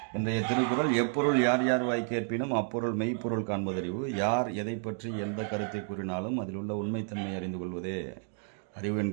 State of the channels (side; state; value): left; silent; 57 dB below the other